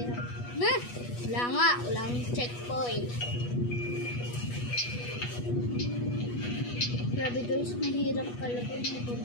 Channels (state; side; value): late; right; 8.3 ms